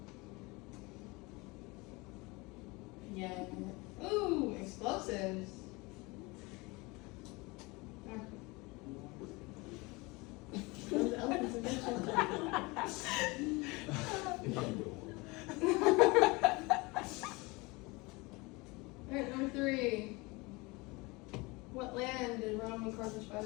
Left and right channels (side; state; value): right; quieter; 24.9 dB